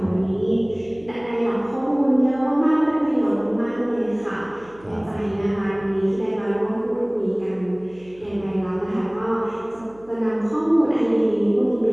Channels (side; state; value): right; noise; hum, 26 dB below the sound